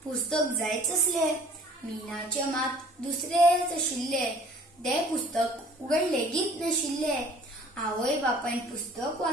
पुस्तक जायच असले। मीनाचे मात दुसरेच आशिल्ले, ते पुस्तक उगड लेगीत नाशिल्ले। आवय बापायन पुस्तक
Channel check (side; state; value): both; normal; correlation 0.50